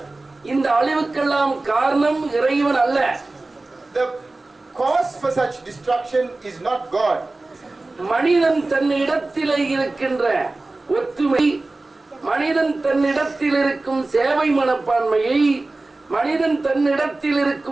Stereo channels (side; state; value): left; quieter; 3.1 dB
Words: இந்த அழிவுக்கெல்லாம் காரணம் இறைவன் அல்ல. The cause for such destruction is not God. மனிதன் தன்னிடத்தில் இருக்கின்ற ஒத்துமை, மனிதன் தன்னிடத்தில் இருக்கும் சேவை மனப்பான்மையை, மனிதன் தன்னிடத்தில்